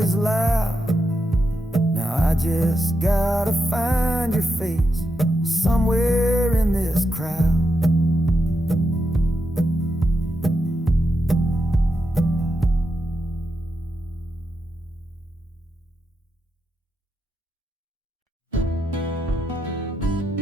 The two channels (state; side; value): normal; both; correlation 0.85